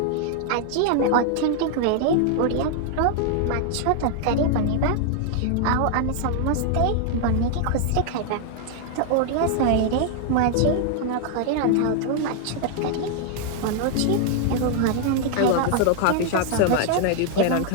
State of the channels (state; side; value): different; both; correlation 0.00